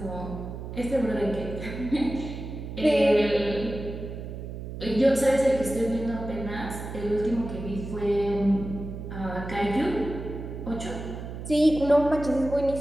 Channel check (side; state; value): right; noise; hum, 9 dB below the sound